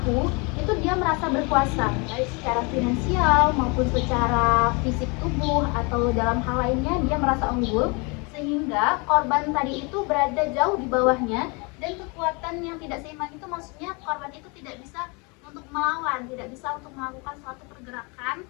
itu dia merasa berkuasa baik secara finansial maupun secara fisik tubuh atau dalam hal lainnya dia merasa unggul, sehingga korban tadi itu berada jauh di bawahnya. Dan kekuatan yang tidak seimbang itu maksudnya korban itu tidak bisa untuk melawan, tidak bisa untuk melakukan suatu pergerakan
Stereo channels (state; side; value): quieter; right; 30.1 dB